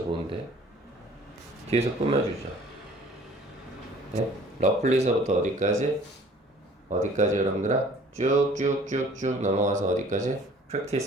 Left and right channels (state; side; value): normal; both; correlation 0.52